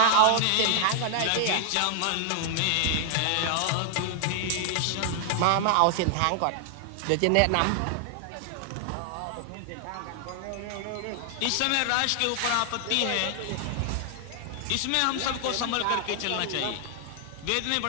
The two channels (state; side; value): different; both; correlation 0.00